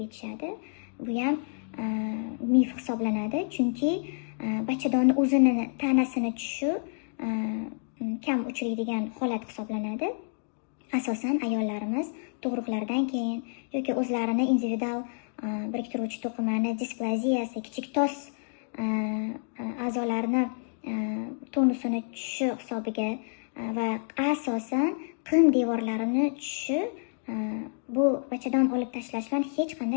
aytishadi. Bu ham mif hisoblanadi, chunki bachadonni o'zini tanasini tushishi kam uchraydigan holat hisoblanadi. Asosan ayollarimiz tug'ruqlardan keyin yoki o'zlarini individual biriktiruvchi to'qimani displaziyasi, kichik tos a'zolarni tonusini tushishi hisobiga va asosan qin devorlarini tushishi bu bachadon olib tashlash bilan hech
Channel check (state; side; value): silent; right; digital silence